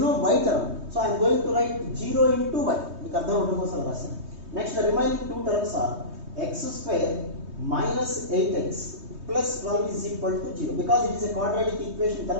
no y term, so I am going to write 0 into y. మీకు అర్థం అవడం కోసం రాశాను. Next, the remaining two terms are x square minus 8x plus 12 is equal to 0, because it is a quadratic equation in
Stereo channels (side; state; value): left; late; 3.2 ms